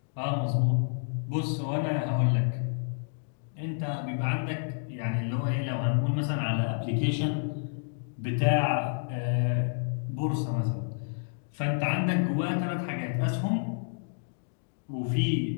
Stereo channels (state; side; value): silent; right; digital silence